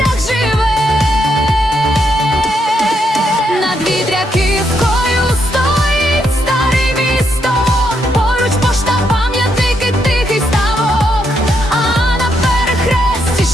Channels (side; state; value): both; normal; correlation 0.78